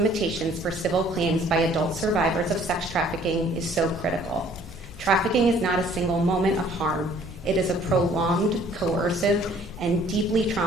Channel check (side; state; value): both; normal; correlation 0.57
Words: for civil claims by adult survivors of sex trafficking is so critical. Trafficking is not a single moment of harm. It is a prolonged, coercive, and deeply